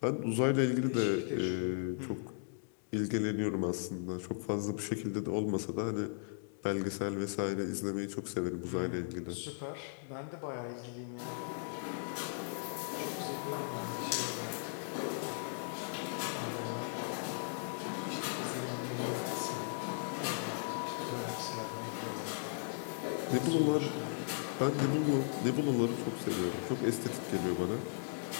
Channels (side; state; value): right; silent; digital silence